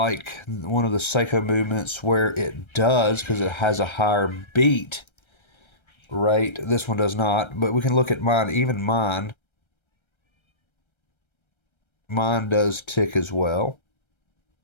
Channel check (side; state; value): right; late; 1.3 ms